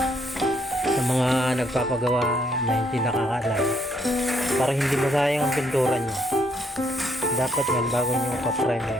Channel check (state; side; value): normal; both; correlation 0.71